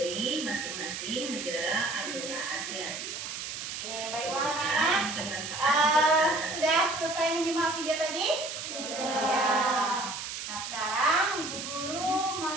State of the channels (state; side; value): noise; right; hiss, 7 dB below the sound